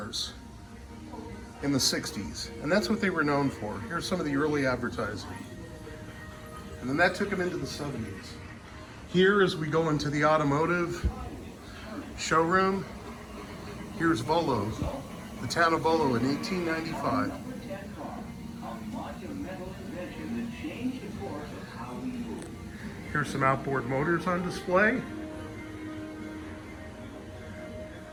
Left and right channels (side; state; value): both; identical; correlation 1.00